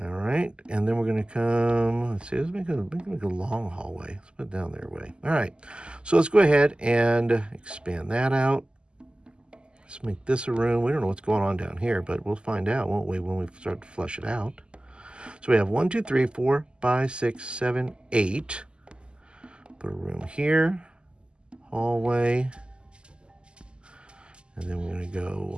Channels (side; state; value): left; late; 0.050 ms